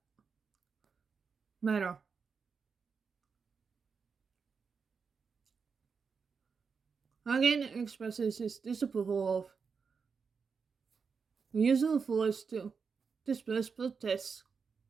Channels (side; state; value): left; quieter; 5.5 dB